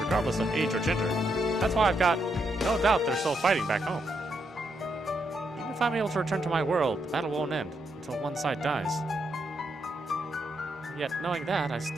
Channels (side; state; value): both; normal; correlation 0.79